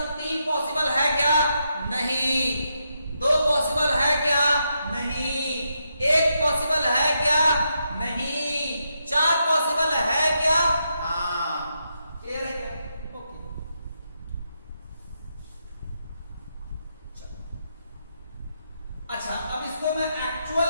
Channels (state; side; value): inverted; both; correlation -0.82